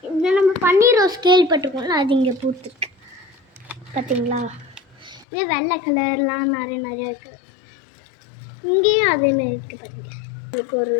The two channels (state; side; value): drops out; right; at 5.2 s